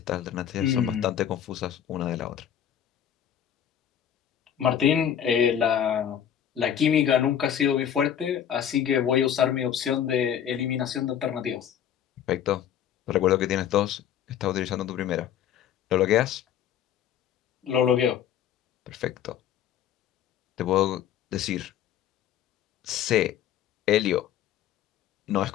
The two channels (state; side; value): quieter; right; 9.6 dB